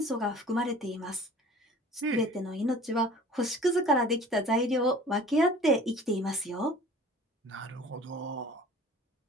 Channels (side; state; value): both; normal; correlation 0.46